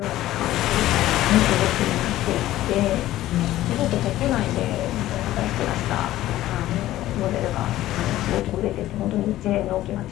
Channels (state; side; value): quieter; right; 14.8 dB